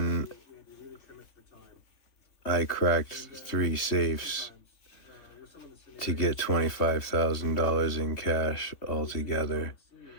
I cracked 3 safes to get $25,000 in cash altogether.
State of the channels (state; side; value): late; right; 3.5 ms